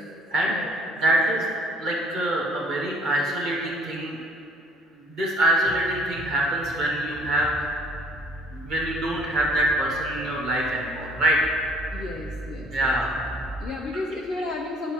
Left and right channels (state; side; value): normal; both; correlation 0.56